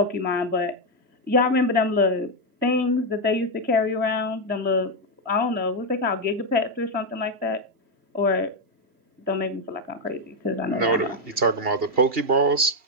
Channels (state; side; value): late; left; 2.8 ms